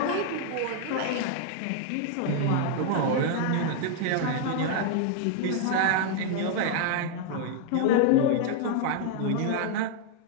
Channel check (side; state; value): both; different; correlation 0.00